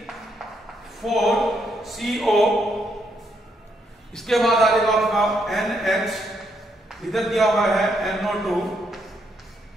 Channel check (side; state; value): both; normal; correlation 0.76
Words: 4CO। इसके बाद आ जाएगा आपका NH, इधर दिया हुआ है NO2,